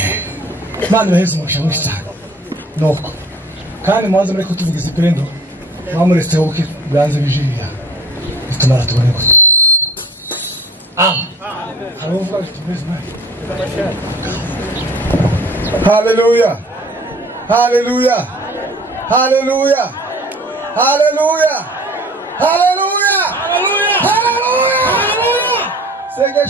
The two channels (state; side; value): normal; both; correlation 0.46